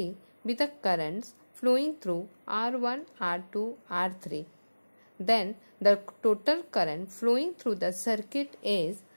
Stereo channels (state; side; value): inverted; both; correlation -1.00